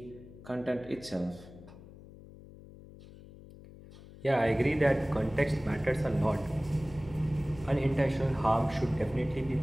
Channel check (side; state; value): left; noise; hum, 18 dB below the sound